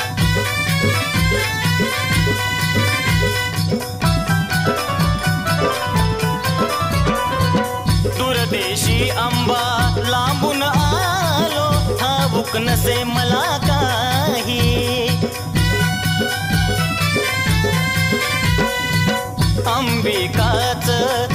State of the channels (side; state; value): both; identical; correlation 1.00